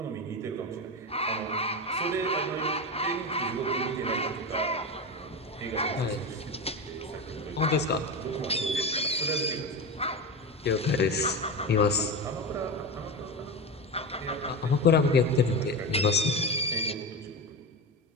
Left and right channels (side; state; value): both; normal; correlation 0.21